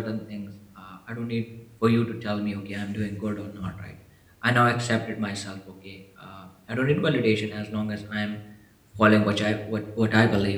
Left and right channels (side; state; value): both; identical; correlation 1.00